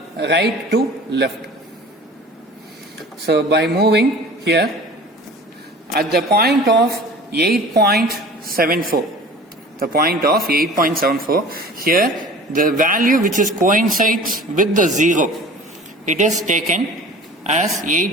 right to left. So by moving here at the point of 8.74, the point of 8.74, here the value which is coincides with the 0, it is taken as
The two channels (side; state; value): both; normal; correlation 0.43